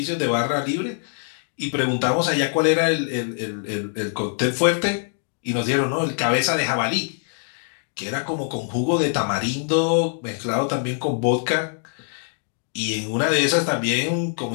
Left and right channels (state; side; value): silent; right; digital silence